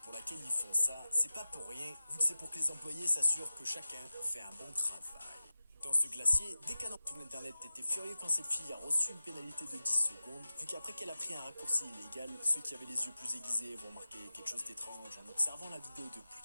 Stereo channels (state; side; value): inverted; both; correlation -0.95